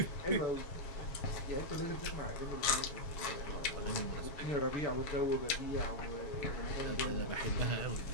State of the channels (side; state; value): right; late; 7.3 ms